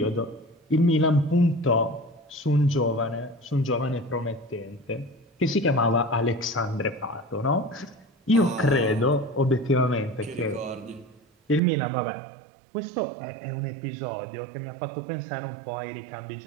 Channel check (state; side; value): drops out; left; at 11.6 s